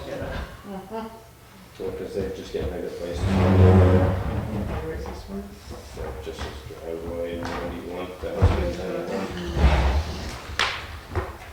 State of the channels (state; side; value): identical; both; correlation 1.00